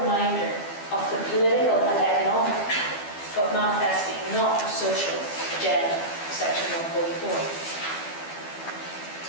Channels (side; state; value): right; late; 12 ms